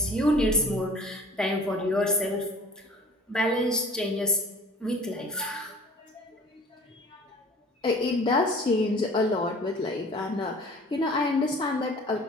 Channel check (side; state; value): both; normal; correlation 0.46